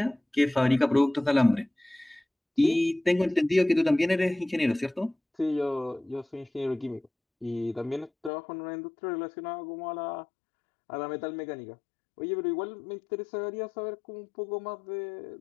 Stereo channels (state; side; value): drops out; right; at 8.3 s